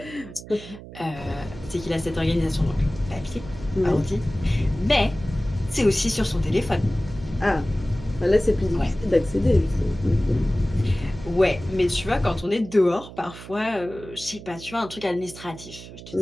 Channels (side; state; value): right; noise; hum, 15 dB below the sound